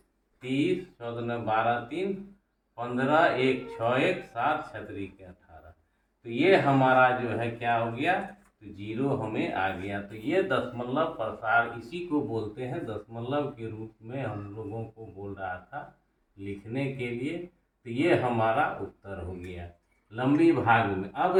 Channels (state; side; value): identical; both; correlation 1.00